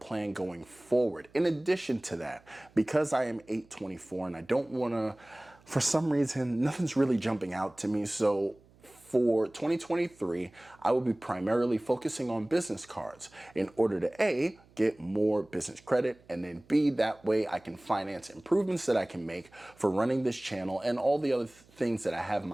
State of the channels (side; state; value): right; noise; hum, 28 dB below the sound